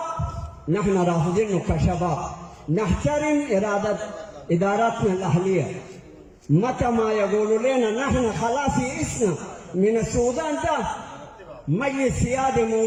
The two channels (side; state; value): both; identical; correlation 1.00